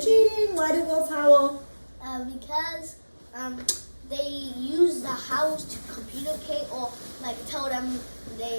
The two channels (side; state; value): both; inverted; correlation -1.00